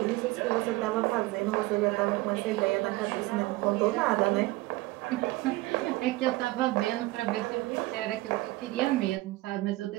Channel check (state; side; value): quieter; left; 19.9 dB